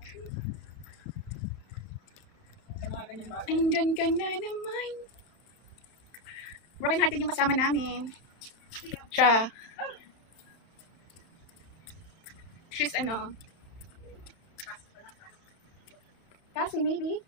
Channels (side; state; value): right; late; 31 ms